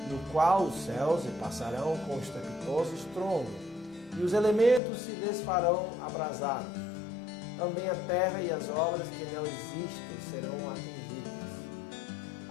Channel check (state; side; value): drops out; right; at 4.8 s